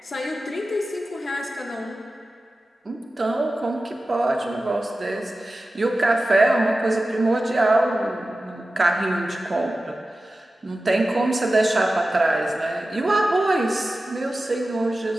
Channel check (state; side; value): normal; both; correlation 0.95